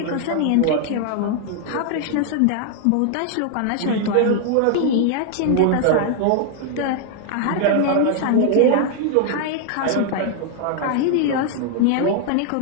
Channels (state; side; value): different; both; correlation 0.00